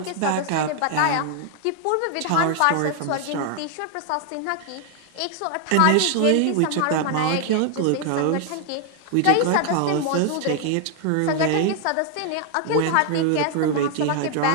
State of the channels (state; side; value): different; both; correlation 0.00